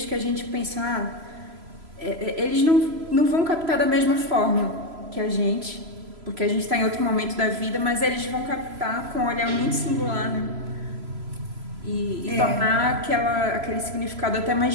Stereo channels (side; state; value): left; late; 3.0 ms